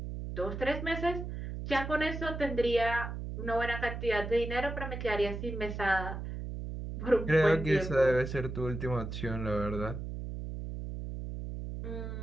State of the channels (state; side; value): noise; right; hum, 6 dB below the sound